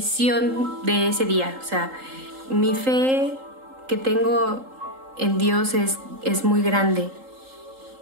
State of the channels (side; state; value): left; late; 3.8 ms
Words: de ese día. O sea, mi fe que tengo en Dios es muy grande.